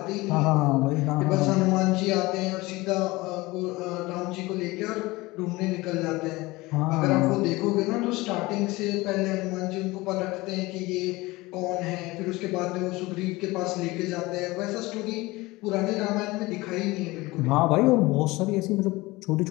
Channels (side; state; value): right; quieter; 21.2 dB